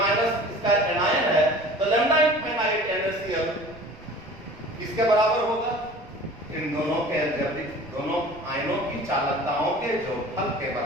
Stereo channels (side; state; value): right; noise; rumble, 21 dB below the sound